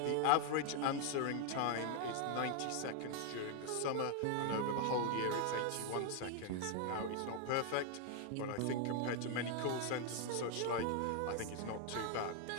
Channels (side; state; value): both; different; correlation 0.01